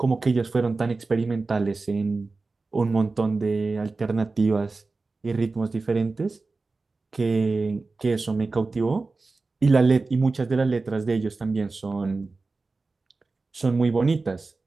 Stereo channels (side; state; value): left; quieter; 3.7 dB